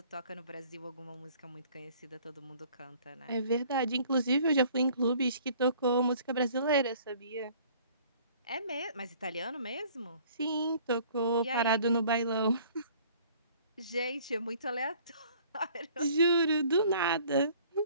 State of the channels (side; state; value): both; inverted; correlation -0.55